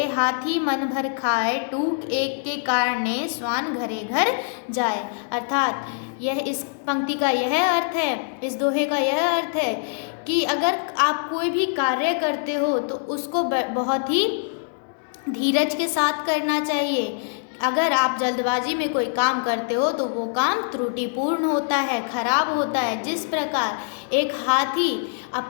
हाथी मन भर खाए, टूक एक के कारणे, स्वान घरे घर जाए। अर्थात यह इस पंक्ति का यह अर्थ है, इस दोहे का यह अर्थ है कि अगर आप कोई भी कार्य करते हो तो उसको बहुत ही धीरज के साथ करना चाहिए। अगर आप जल्दबाजी में कोई काम करते हो तो वो काम त्रुटिपूर्ण होता है, खराब होता है। जिस प्रकार एक हाथी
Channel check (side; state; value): right; silent; digital silence